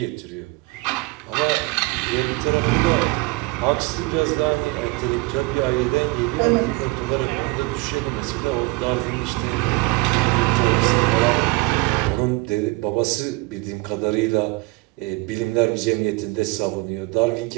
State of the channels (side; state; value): left; quieter; 23.9 dB